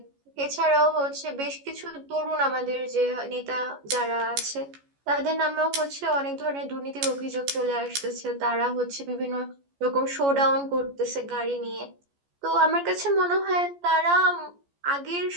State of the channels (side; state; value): left; late; 14 ms